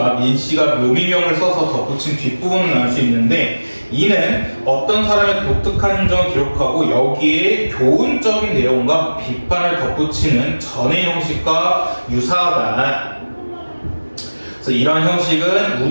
민씨가 묘미명을 써서 덧붙인 뒷부분을 알 수 있는데, 이는 어떤 사람의 독특한 행정을 기록하고 여기에 교훈적인 내용과 비판을 덧붙이는 전의 형식과 유사하다. 그래서 이러한 형식은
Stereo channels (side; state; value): both; inverted; correlation -1.00